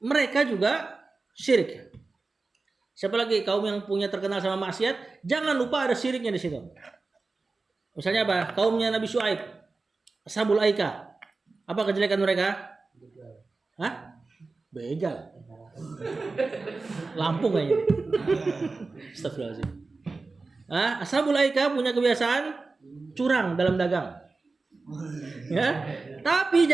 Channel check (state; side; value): quieter; left; 3.8 dB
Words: juga syirik. Siapa lagi kaum yang punya terkenal sama maksiat? Jangan lupa ada syiriknya di situ. Misalnya apa? Kaumnya Nabi Syuaib, Ashabul Aika. Apa kejelekan mereka? Hah? Begal. Lampung kayaknya. Astagfirullahaladzim. Ashabul Aika punya kebiasaan curang dalam dagang. Ya, tapi